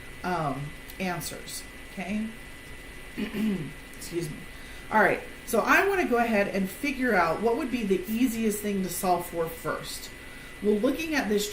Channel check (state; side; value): identical; both; correlation 1.00